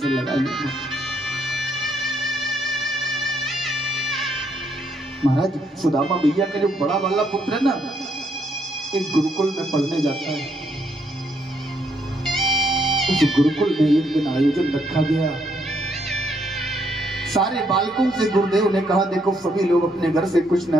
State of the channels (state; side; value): normal; both; correlation 0.73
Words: लगा लूंगा। महाराज, सुदामा भैया का जो बड़ा वाला पुत्र है ना, एक गुरुकुल में पढ़ने जाता है। उस गुरुकुल में एक दिन आयोजन रखा गया। सारे बालकों से गुरुदेव ने कहा, देखो सभी लोग अपने घर से कुछ ना